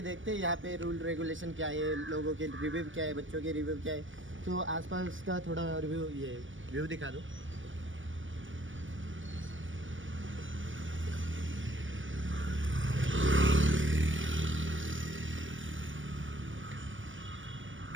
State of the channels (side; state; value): left; late; 0.56 ms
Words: देखते हैं यहाँ पे रूल रेगुलेशन क्या है, लोगों के रिव्यू क्या है, बच्चों के रिव्यू क्या है। तो आसपास का थोड़ा रिव्यू ये व्यू दिखा दो।